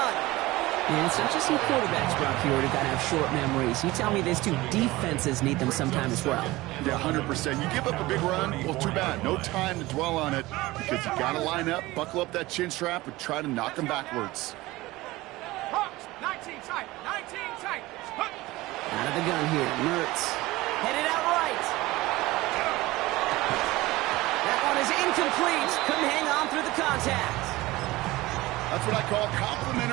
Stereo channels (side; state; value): left; quieter; 19.3 dB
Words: And it's not just some quarterbacks, Brock, here who got to have short memories. You tell me these two defenses need them sometime as well. Yeah, 100%. You give up a big run, well, too bad. No time to dwell on it because you got to line up, buckle up that chin strap, and try to knock them backwards. Hawks, 19 tight, 19 tight. Out of the gun here, Mertz. Headed out right. That one is incomplete. Couldn't hang on through the contact. That's what I call